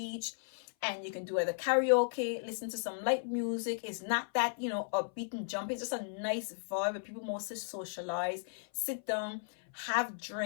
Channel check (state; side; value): silent; right; 54 dB below the other